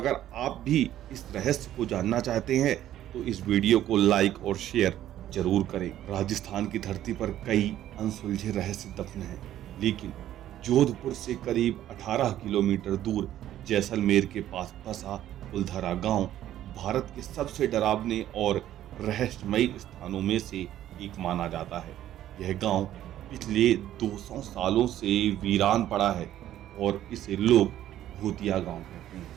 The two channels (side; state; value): left; quieter; 12.4 dB